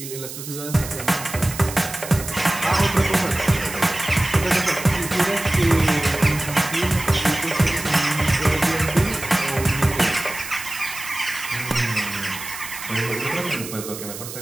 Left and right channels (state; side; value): noise; right; hiss, 10 dB below the sound